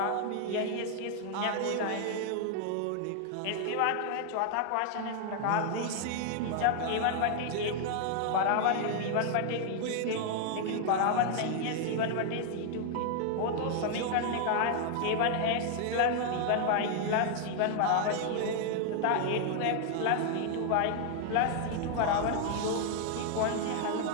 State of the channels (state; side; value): different; both; correlation 0.00